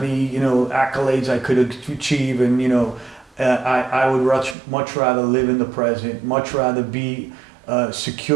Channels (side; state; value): left; drops out; at 4.5 s